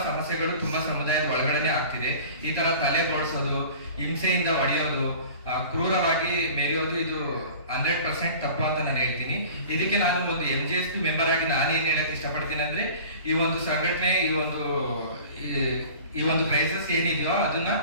ಸಮಸ್ಯೆಗಳು ತುಂಬಾ ಸಮುದಾಯದ ಒಳಗಡೆನೆ ಆಗ್ತಿದೆ. ಈ ತರ ತಲೆ ಬೋಡ್ಸೋದು, ಹಿಂಸೆಯಿಂದ ಹೊಡೆಯೋದು, ಕ್ರೂರವಾಗಿ ಮೆರೆಯೋದು, ಇದು 100% ತಪ್ಪು ಅಂತ ನಾನು ಹೇಳ್ತೀನಿ. ಇದಕ್ಕೆ ನಾನು ಒಂದು MGSP ಮೆಂಬರ್ ಆಗಿ ನಾನು ಏನ್ ಹೇಳಕ್ ಇಷ್ಟಪಡ್ತೀನಿ ಅಂದ್ರೆ, ಈ ಒಂದು ಸಂಘಟನೆ, ಈ ಒಂದು ಕ್ರೈಸಿಸ್ ಏನಿದೆಯೋ ಅದನ್ನ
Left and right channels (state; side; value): inverted; both; correlation -0.42